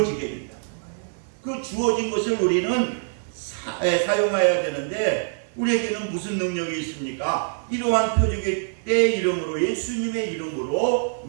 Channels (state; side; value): silent; left; 55 dB below the other